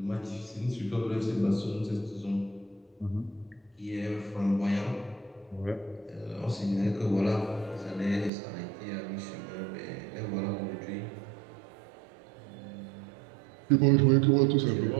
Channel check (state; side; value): drops out; left; at 8.3 s